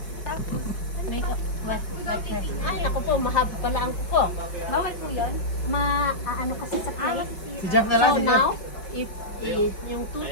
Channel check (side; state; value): right; late; 5.3 ms